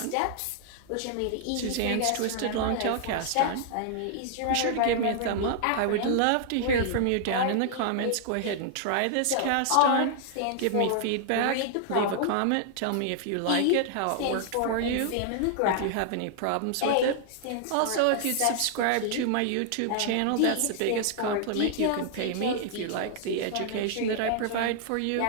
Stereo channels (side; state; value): both; different; correlation -0.01